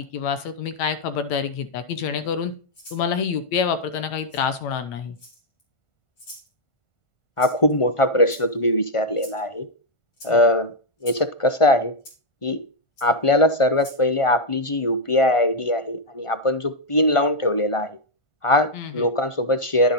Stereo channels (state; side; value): late; right; 1.5 ms